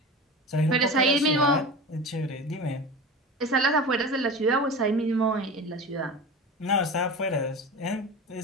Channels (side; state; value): both; normal; correlation 0.30